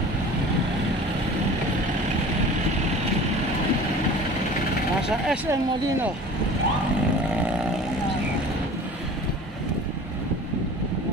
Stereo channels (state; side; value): normal; both; correlation 0.42